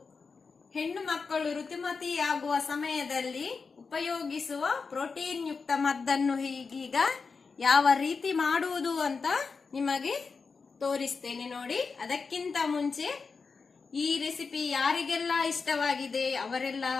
ಹೆಣ್ಣು ಮಕ್ಕಳು ಋತುಮತಿಯಾಗುವ ಸಮಯದಲ್ಲಿ ಉಪಯೋಗಿಸುವ ಪ್ರೋಟೀನ್ ಯುಕ್ತ ಮದ್ದನ್ನು ಹೀಗೀಗ ಯಾವ ರೀತಿ ಮಾಡುವುದು ಅಂತ ನಿಮಗೆ ತೋರಿಸ್ತೇನೆ ನೋಡಿ. ಅದಕ್ಕಿಂತ ಮುಂಚೆ ಈ ರೆಸಿಪಿ ಯಾರಿಗೆಲ್ಲ ಇಷ್ಟವಾಗಿದೆ ಅವರೆಲ್ಲ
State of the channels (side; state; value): right; quieter; 4.9 dB